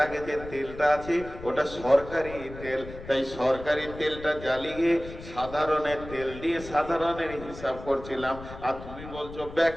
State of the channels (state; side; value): noise; left; rumble, 13 dB below the sound